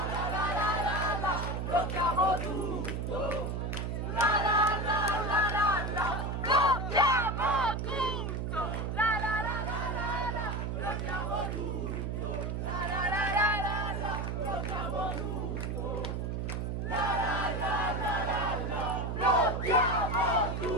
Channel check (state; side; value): noise; right; hum, 2 dB below the sound